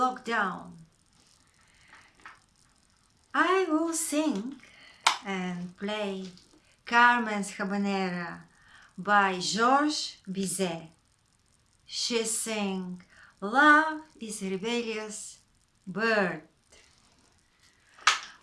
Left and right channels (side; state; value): both; identical; correlation 1.00